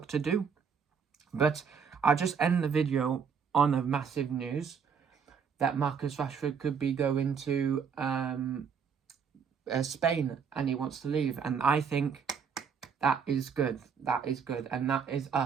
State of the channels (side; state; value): left; quieter; 6.5 dB